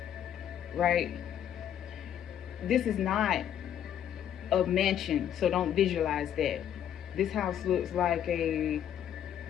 right? This is not a mansion, so don't visualize that. This house looks like a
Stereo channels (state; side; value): quieter; right; 9.9 dB